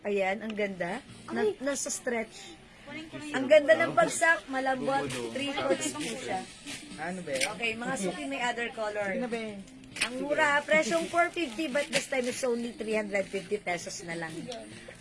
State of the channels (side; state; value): both; identical; correlation 1.00